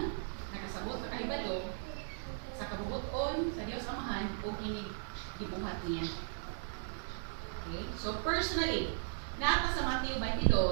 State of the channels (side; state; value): left; silent; digital silence